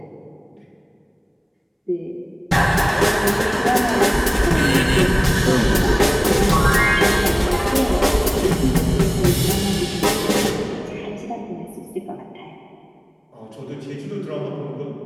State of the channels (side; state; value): both; identical; correlation 1.00